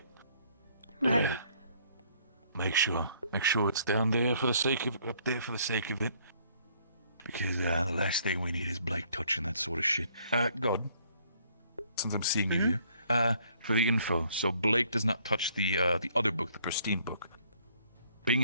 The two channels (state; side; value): inverted; both; correlation -0.64